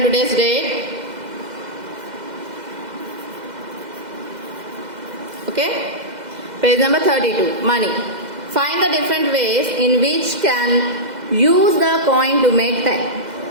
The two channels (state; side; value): late; left; 2.0 ms